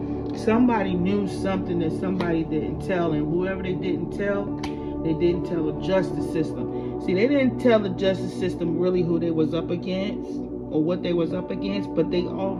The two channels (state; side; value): identical; both; correlation 1.00